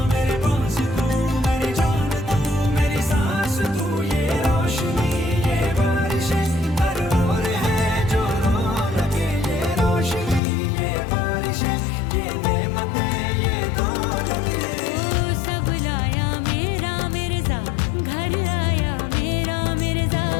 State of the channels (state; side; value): drops out; right; at 10.4 s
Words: मेरे पास तू, मेरी जान तू, मेरी सांस तू, ये रोशनी ये बारिशें हर ओर है जो रो लगे, ये रोशनी ये बारिशें ये नेमतें ये दौलतें। ओ सब लाया मेरा मिर्जा, घर आया मेरा मिर्जा,